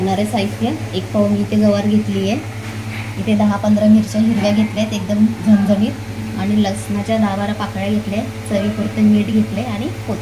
साहित्य: एक पाव मी इथे गवार घेतली आहे, इथे 10-15 मिरच्या हिरव्या घेतल्या आहेत एकदम झणझणीत, आणि लसणाच्या 10-12 पाकळ्या घेतल्या, चवीपुरतं मीठ घेतले आणि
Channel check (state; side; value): identical; both; correlation 1.00